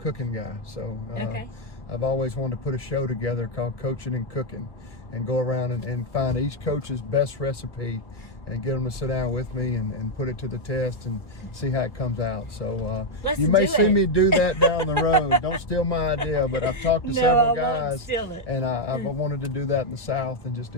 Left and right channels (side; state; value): right; late; 1.2 ms